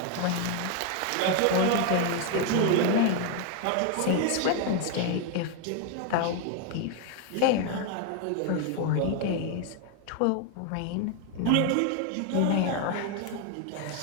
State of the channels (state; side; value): different; both; correlation 0.01